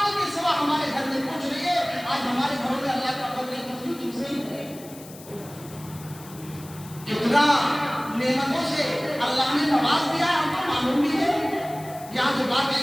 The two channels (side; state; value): left; noise; hiss, 19 dB below the sound